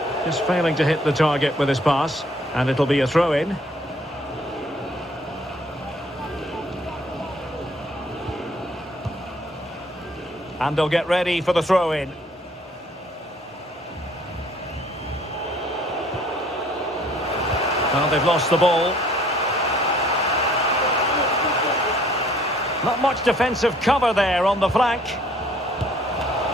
Just failing to hit the target with his pass, and it'll be a throw-in. And they'll get ready for the throw-in. Well, they've lost the ball. Not much defensive cover there on the flank.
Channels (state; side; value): normal; both; correlation 0.59